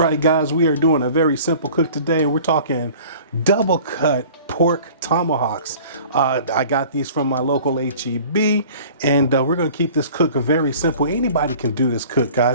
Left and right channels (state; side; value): inverted; both; correlation -0.46